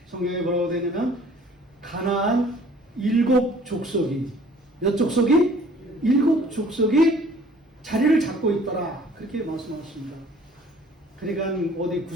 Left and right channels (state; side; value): normal; both; correlation 0.54